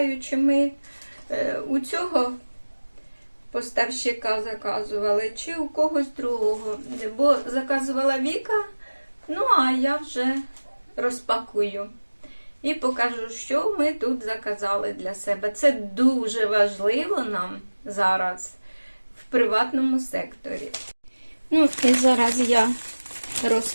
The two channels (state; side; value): inverted; both; correlation -1.00